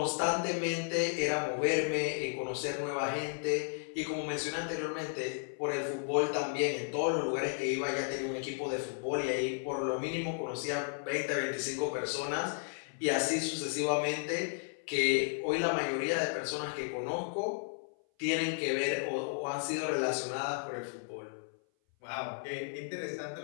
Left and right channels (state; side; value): silent; right; 55 dB below the other